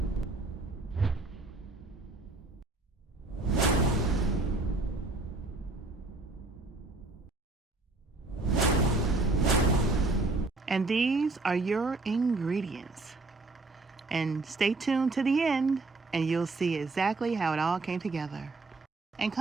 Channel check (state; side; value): quieter; left; 3.3 dB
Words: And these are your ingredients. And stay tuned to the end and you'll see exactly how it all came together. And